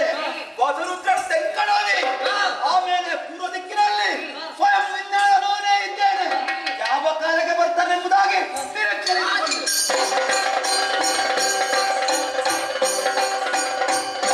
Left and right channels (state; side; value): identical; both; correlation 1.00